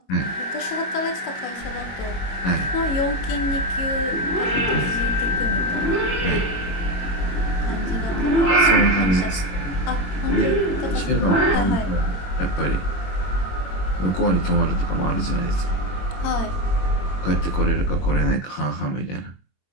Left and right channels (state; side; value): late; right; 21 ms